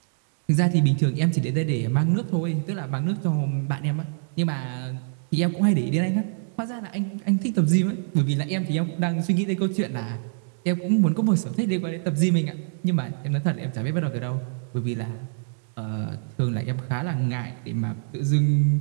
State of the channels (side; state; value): left; silent; digital silence